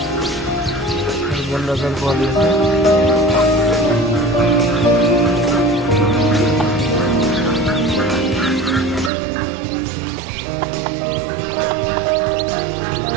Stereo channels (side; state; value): left; drops out; at 9.1 s